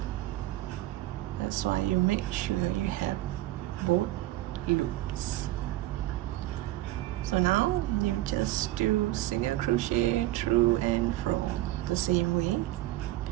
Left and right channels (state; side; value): quieter; left; 16.4 dB